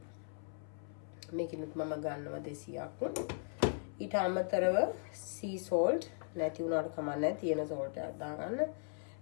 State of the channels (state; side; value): silent; right; 52 dB below the other